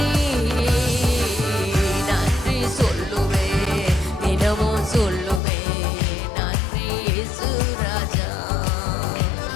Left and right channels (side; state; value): right; drops out; at 5.4 s